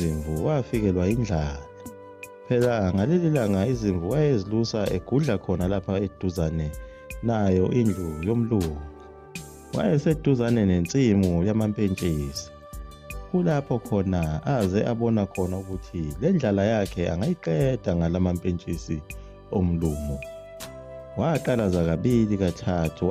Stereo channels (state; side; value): identical; both; correlation 1.00